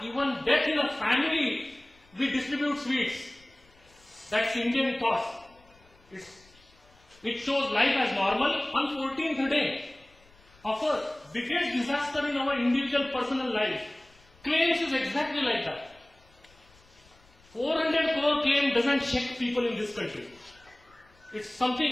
even death in a family we distribute sweets. That's Indian cost. It shows life as normal. On 14th day of a biggest disaster in our individual personal life, claims is exactly like that. 400 crore claim doesn't shake people in this country. It's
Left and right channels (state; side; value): noise; left; rumble, 29 dB below the sound